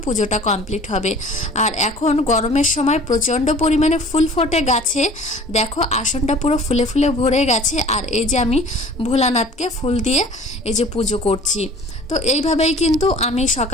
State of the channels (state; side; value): normal; both; correlation 0.46